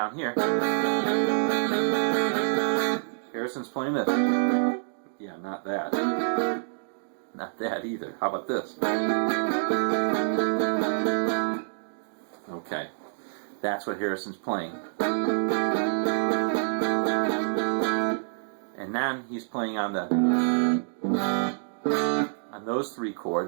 here, Harrison's playing this. Yeah, not that. Not that either. How about this? Okay, that's what Harrison's playing. And then he's playing on those three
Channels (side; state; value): left; silent; digital silence